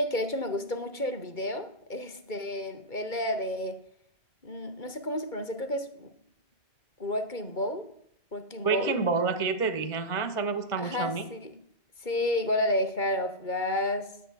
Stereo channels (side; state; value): right; late; 2.2 ms